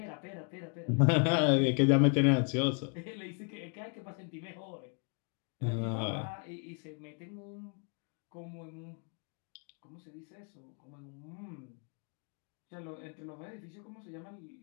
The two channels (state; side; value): quieter; right; 39.4 dB